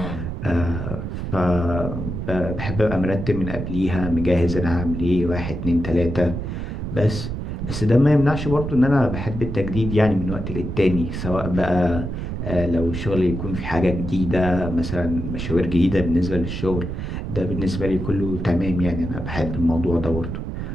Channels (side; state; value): right; noise; rumble, 5 dB below the sound